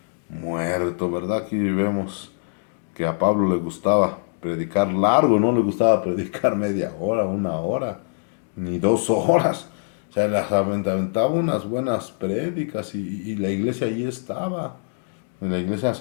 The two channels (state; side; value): silent; right; digital silence